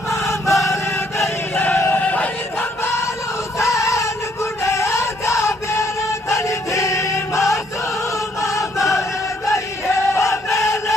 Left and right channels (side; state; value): both; normal; correlation 0.68